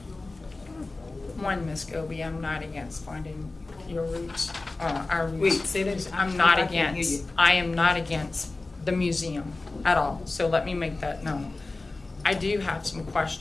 One, Ms. Scobie, I'm not against finding your roots, our roots. Wait, say that. I'm not I can't hear against, you. I am not against the museum at all, so let me make that known. I do have some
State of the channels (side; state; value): right; quieter; 3.3 dB